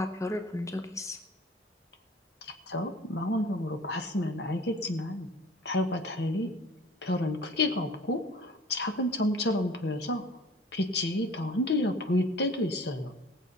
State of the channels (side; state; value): both; normal; correlation 0.46